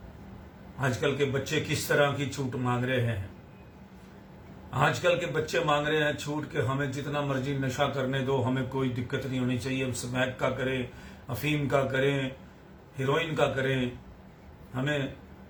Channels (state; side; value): identical; both; correlation 1.00